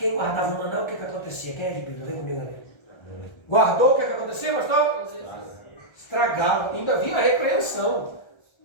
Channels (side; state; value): right; late; 1.3 ms